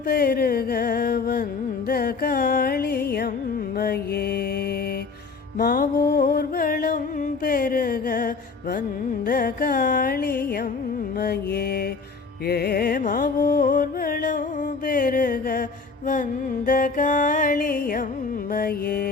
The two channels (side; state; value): right; quieter; 4.6 dB